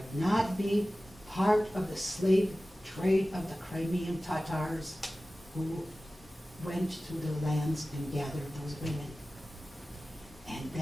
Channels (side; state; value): both; normal; correlation 0.96